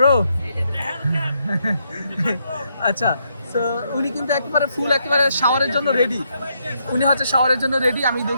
আচ্ছা, তো উনি কিন্তু একেবারে ফুল, একেবারে শাওয়ারের জন্য রেডি, উনি হচ্ছে শাওয়ারের জন্য রেডি। আমি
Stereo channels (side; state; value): both; inverted; correlation -0.77